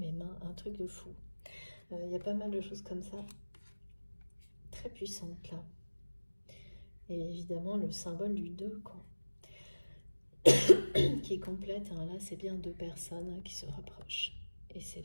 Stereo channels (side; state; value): both; inverted; correlation -1.00